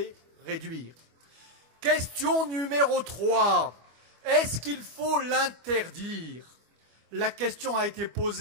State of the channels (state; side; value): late; left; 25 ms